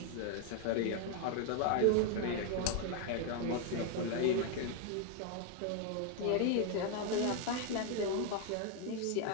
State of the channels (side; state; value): both; different; correlation 0.01